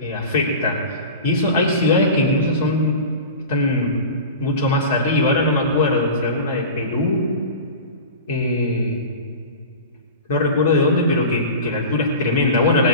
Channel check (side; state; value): both; inverted; correlation -0.32